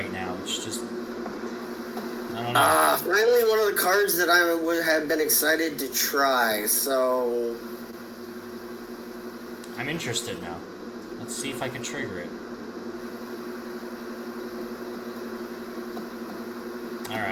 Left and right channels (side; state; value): both; identical; correlation 1.00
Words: now. It's just... I don't know. Finally one of the cards that I would have been excited to try, so... I'm interested now. Let's see if I can trigger it.